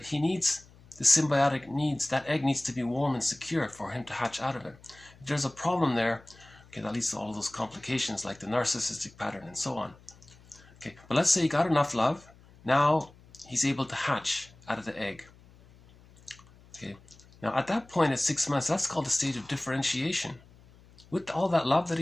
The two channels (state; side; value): noise; left; hum, 25 dB below the sound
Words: he needs the symbiotic needs. That egg needs to be warm and secure for him to hatch out of it. If there's a problem there, okay, that leads to all those complications like the narcissistic pattern and so on. Okay, but let's say he got enough love. Now he's able to hatch out of the egg. Okay, now at that point at 6 months, that's called a stage of differentiation. With all that love that